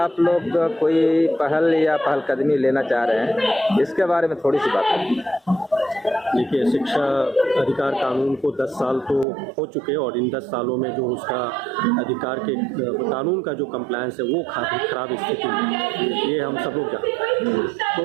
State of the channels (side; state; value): left; drops out; at 9.2 s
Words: लोग कोई पहल या पहलकदमी लेना चाह रहे हैं, इसके बारे में थोड़ी सी बात करें। देखिए, शिक्षा अधिकार कानून को 10 साल तो हो चुके और इन 10 सालों में जो उसका अधिकार के कानून का जो कंप्लायंस है वो खराब स्थिति में, ये हम सब लोग जानते हैं।